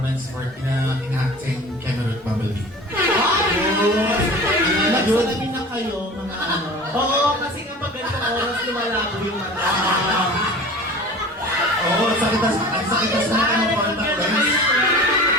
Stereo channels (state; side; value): normal; both; correlation 0.39